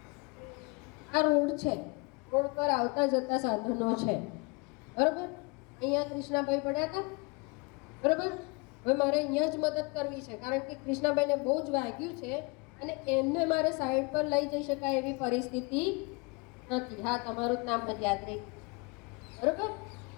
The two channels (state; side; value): quieter; right; 28.9 dB